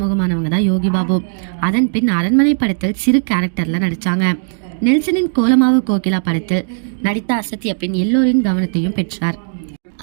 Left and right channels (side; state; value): left; silent; digital silence